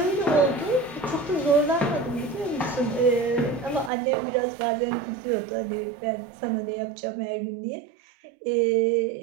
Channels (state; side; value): drops out; left; at 3.9 s